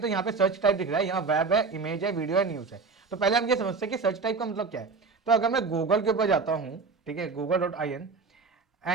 यहाँ पे सर्च टाइप दिख रहा है, यहाँ वेब है, इमेज है, वीडियो है, न्यूज है। तो पहले हम ये समझते हैं कि सर्च टाइप का मतलब क्या है। तो अगर मैं गूगल के ऊपर जाता हूँ, ठीक है, google.in,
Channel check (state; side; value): quieter; left; 4.5 dB